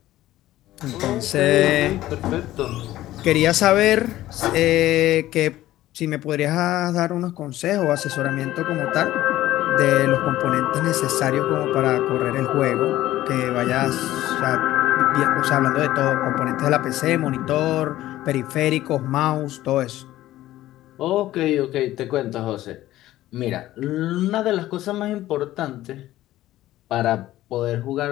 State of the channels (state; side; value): quieter; right; 15.0 dB